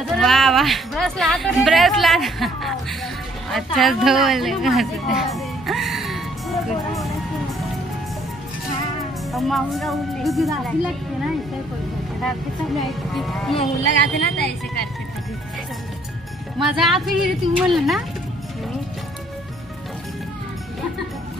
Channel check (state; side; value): normal; both; correlation 0.64